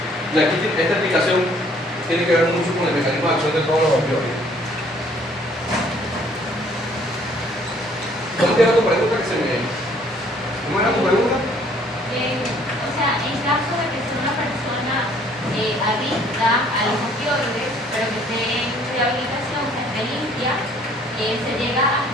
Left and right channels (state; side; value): normal; both; correlation 0.60